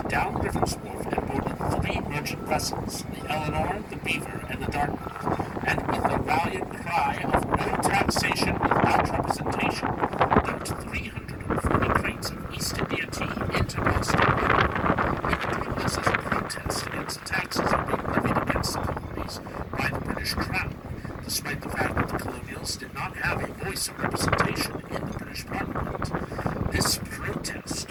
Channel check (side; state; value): both; identical; correlation 1.00